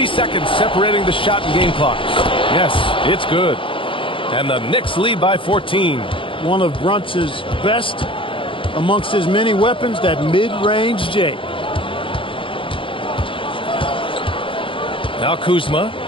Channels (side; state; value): right; late; 0.25 ms